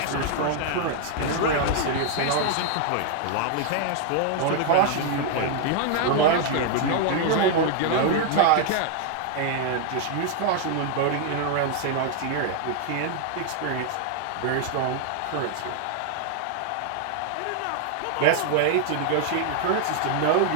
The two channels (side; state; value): both; different; correlation 0.00